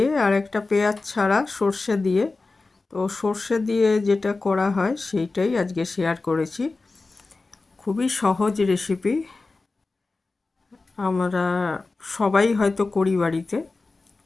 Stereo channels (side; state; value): right; quieter; 3.6 dB